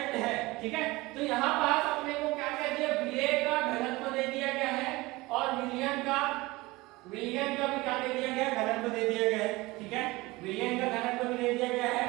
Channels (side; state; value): left; quieter; 21.4 dB